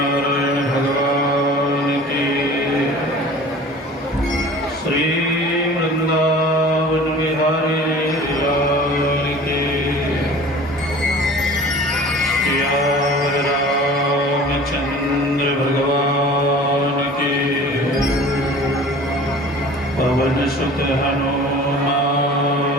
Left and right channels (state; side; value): normal; both; correlation 0.43